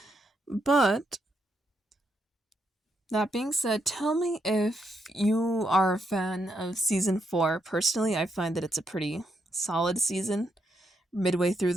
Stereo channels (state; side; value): normal; both; correlation 0.80